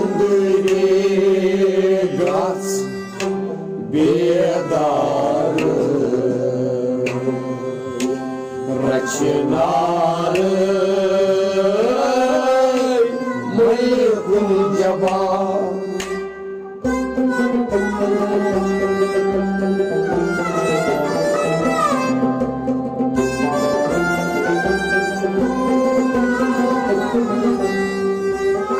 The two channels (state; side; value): identical; both; correlation 1.00